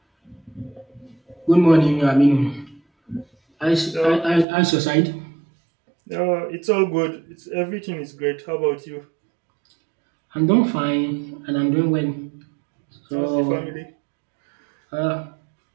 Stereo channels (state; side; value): drops out; left; at 4.5 s